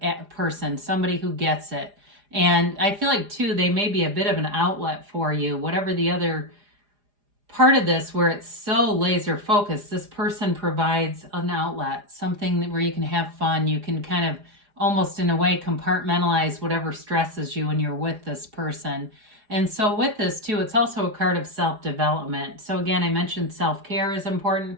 person, somebody who gets it. And I feel like too, they may be a bit of an outlet for you, whatever the other part of this where it's so laser focused. This person provides an outlet, something where you can have fun. You can kind of almost in a way compartmentalize whatever stresses you when you're with this person. And so with this too, it's also a card of self-development. So again, I mentioned self-care is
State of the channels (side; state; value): left; late; 4.9 ms